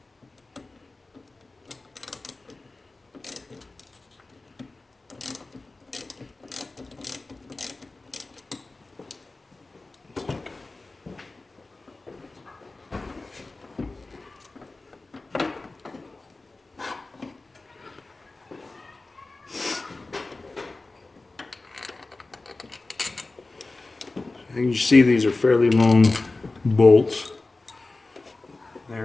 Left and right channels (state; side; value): quieter; right; 3.3 dB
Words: And you see these are fairly long bolts.